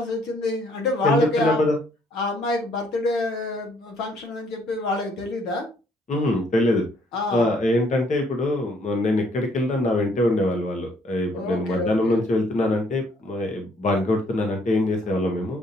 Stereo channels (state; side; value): normal; both; correlation 0.66